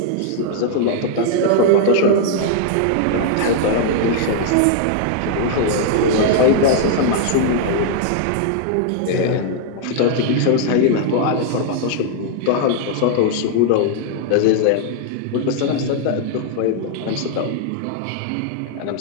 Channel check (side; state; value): both; different; correlation -0.01